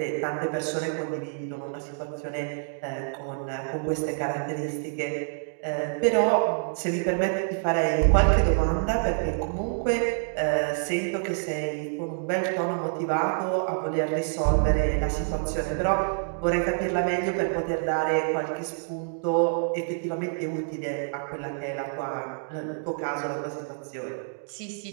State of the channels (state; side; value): silent; left; digital silence